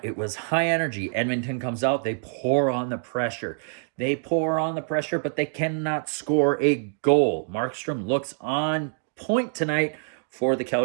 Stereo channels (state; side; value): silent; left; digital silence